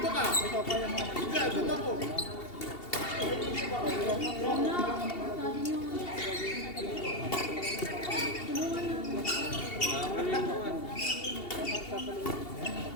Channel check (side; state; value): right; late; 2.7 ms